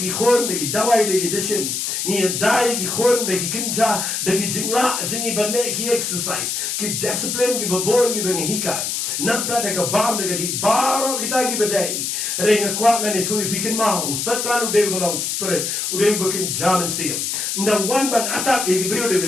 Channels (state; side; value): noise; left; hiss, 2 dB below the sound